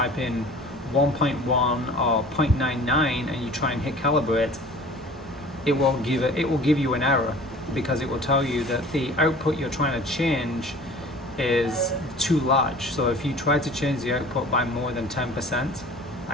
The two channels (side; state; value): both; normal; correlation 0.44